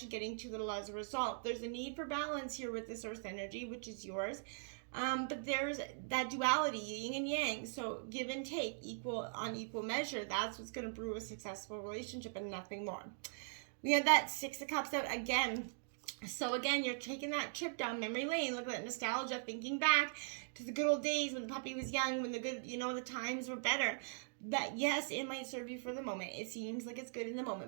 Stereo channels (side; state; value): left; silent; digital silence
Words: and getting too little as a result. There's a need for balance here with this Earth energy, which is yours. But there's that duality, yin and yang. So give and take, equal on equal measure. That's what's going to brew a successful relationship and nothing more. We have that 6 of Cups out again. So again, you're taking that trip down memory lane. Look at that nostalgia, thinking back to the good old days when the puppy was young, when the good, the times were better. That, yes, it might serve you for the moment. It seems like it's good in the